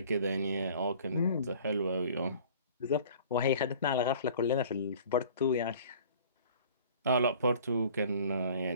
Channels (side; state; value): both; inverted; correlation -0.49